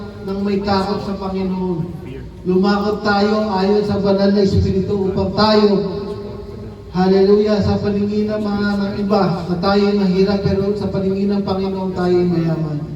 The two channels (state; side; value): identical; both; correlation 1.00